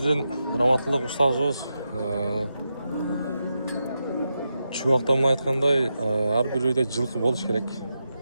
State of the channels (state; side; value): inverted; both; correlation -0.88